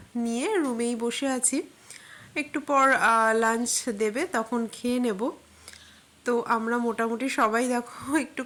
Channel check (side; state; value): both; identical; correlation 1.00